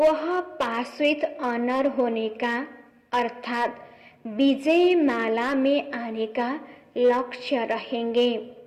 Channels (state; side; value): identical; both; correlation 1.00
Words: पास विथ ऑनर होने का अर्थात विजय माला में आने का लक्ष्य रहेंगे।